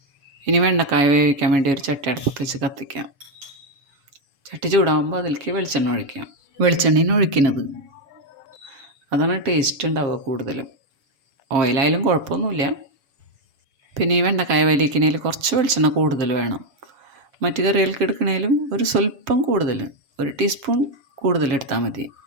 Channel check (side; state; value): left; late; 7.1 ms